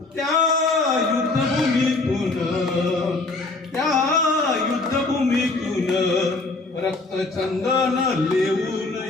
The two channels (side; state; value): right; quieter; 3.4 dB